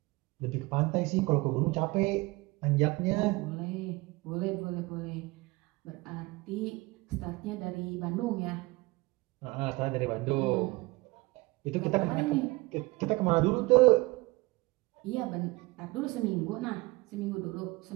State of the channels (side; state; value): left; quieter; 23.4 dB